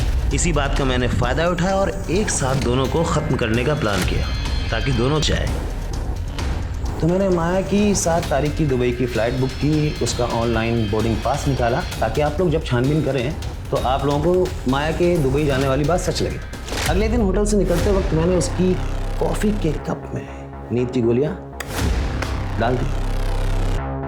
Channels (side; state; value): both; identical; correlation 1.00